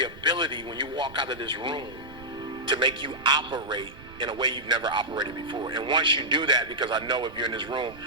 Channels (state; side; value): noise; right; rumble, 18 dB below the sound